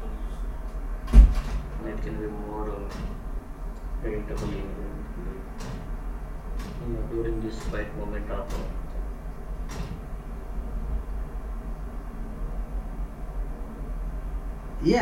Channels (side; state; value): both; identical; correlation 1.00